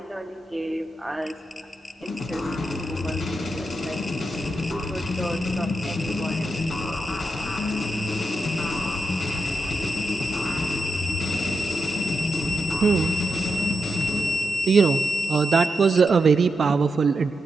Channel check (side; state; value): both; normal; correlation 0.87